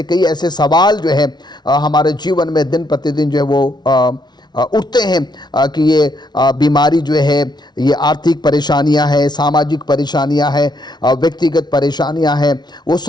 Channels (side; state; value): right; late; 0.20 ms